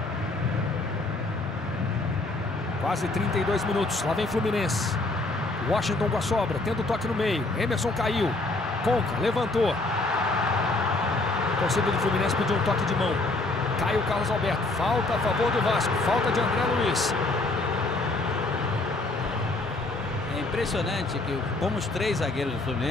Quase 32 minutos, lá vem Fluminense. Washington com a sobra, tenta o toque no meio. Emerson caiu. Conca, levantou. A torcida do Fluminense pediu um toque de mão. Cai o Carlos Alberto. Falta a favor do Vasco. Falta de André Luiz. É impressionante que como os 3 zagueiros do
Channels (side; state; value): right; quieter; 3.0 dB